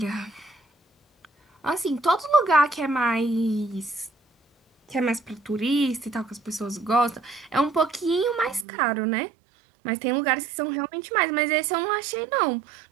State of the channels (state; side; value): drops out; left; at 8.7 s